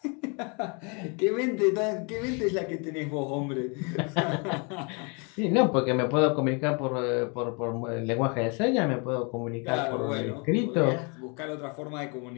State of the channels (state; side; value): quieter; right; 33.8 dB